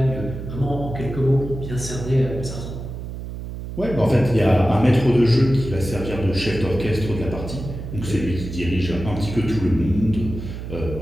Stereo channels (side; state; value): right; noise; hum, 8 dB below the sound